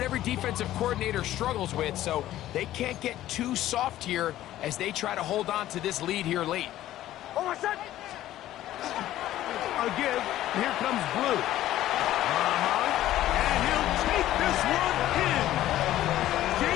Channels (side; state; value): right; quieter; 13.8 dB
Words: every defensive coordinator struggles with, so they can't get too soft here as they try to hold on to this lead here late. Again, here comes Blue. And he'll take this one in.